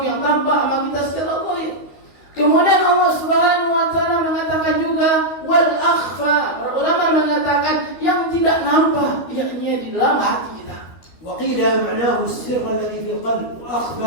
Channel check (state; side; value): late; right; 12 ms